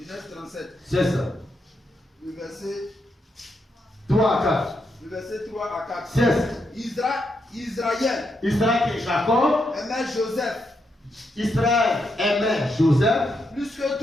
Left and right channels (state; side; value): normal; both; correlation 0.81